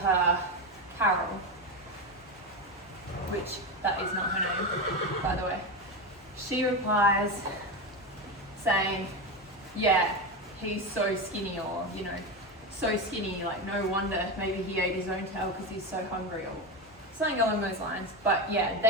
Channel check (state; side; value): normal; both; correlation 0.16